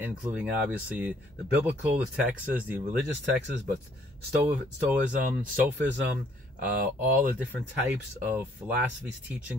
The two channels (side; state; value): both; normal; correlation 0.64